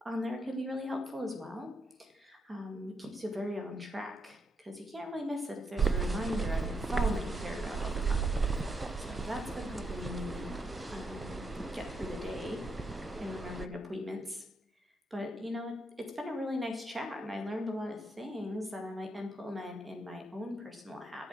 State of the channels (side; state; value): both; normal; correlation 0.79